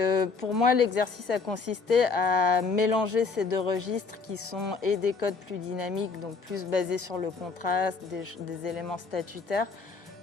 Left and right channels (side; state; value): right; quieter; 4.6 dB